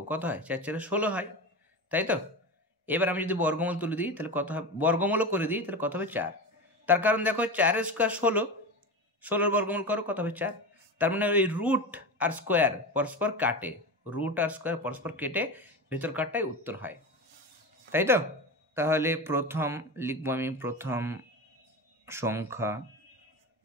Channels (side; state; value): both; normal; correlation 0.23